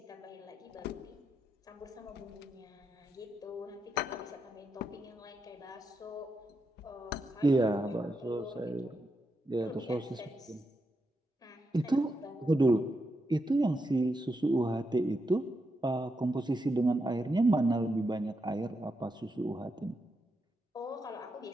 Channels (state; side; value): normal; both; correlation 0.84